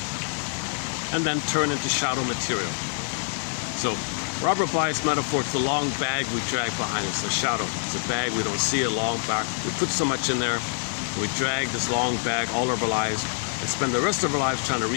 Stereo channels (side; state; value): right; silent; 61 dB below the other